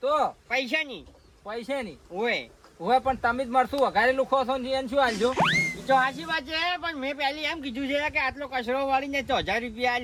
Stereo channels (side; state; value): both; identical; correlation 1.00